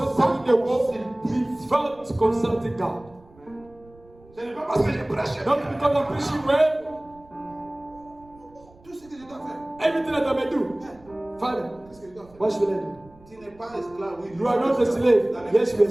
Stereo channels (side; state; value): right; noise; rumble, 26 dB below the sound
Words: fighting the war, he felt consulting God. Ce n'est pas parce que je prêche Not bien. because I'm preaching well, Tout ce que je dois faire. everything that I may do. Father, Qu'est-ce que je dois faire? what should I do? Tu n'es pas esclave, oui. You are not a slave. Yes, you are a